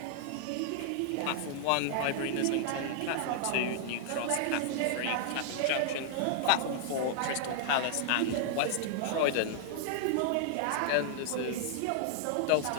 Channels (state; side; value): different; both; correlation -0.01